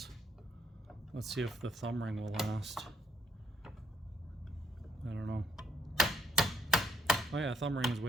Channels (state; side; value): normal; both; correlation 0.70